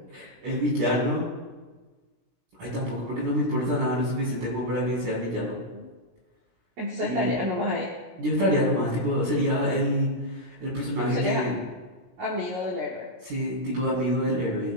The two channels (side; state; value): left; late; 17 ms